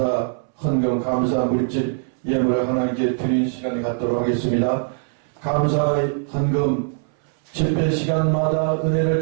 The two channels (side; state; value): left; silent; 64 dB below the other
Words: 헌금 감사 물질 예물을 하나님께 드리는 시간을 갖도록 하겠습니다. 감사 헌금 집회 시간마다 은혜를